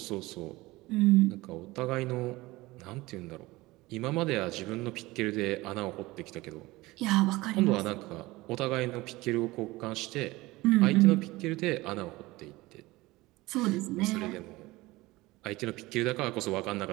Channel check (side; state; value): left; quieter; 20.2 dB